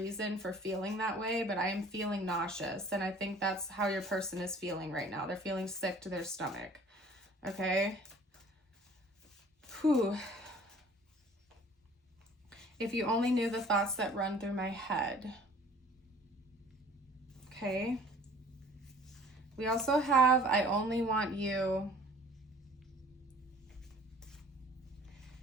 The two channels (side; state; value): both; normal; correlation 0.51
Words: for feeling that way, but I am feeling nauseous. And I think that's how your person is feeling right now. They're feeling sick to their stomach. Okay. Whew. If you only knew the thoughts that run through my head. Okay. We also have, I only want you.